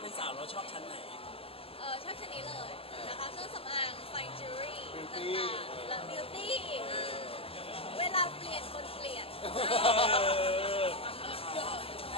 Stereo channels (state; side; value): late; right; 0.28 ms